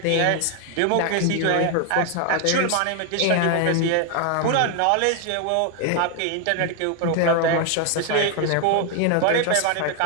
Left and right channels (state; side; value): different; both; correlation 0.01